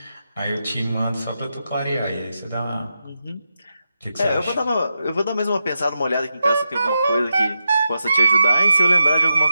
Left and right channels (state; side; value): inverted; both; correlation -0.87